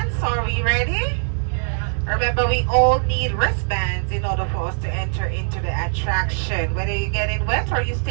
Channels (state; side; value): silent; left; 65 dB below the other